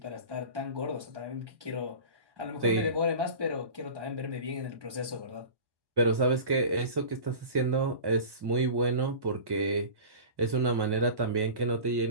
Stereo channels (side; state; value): left; late; 1.1 ms